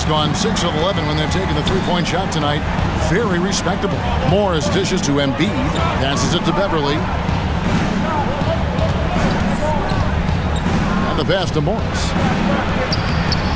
gone 6 of 11 when they've taken the three-point shot tonight. Very respectable. Morris dishes to Embiid. Passes it to Beverly. And the pass to Morris.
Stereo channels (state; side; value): identical; both; correlation 1.00